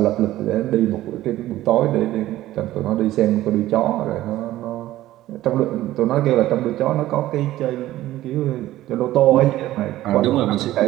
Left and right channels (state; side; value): quieter; left; 15.0 dB